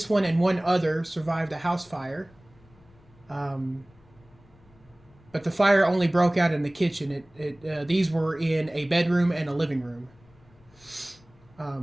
one and one other survived a house fire. Um, but the fire only broke out in the kitchen. These were in a bedroom and a living room.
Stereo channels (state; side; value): noise; left; rumble, 28 dB below the sound